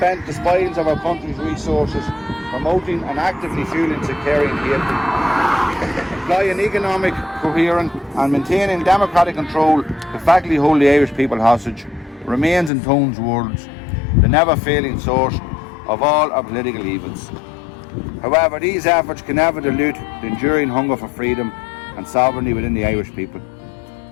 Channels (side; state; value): right; drops out; at 12.7 s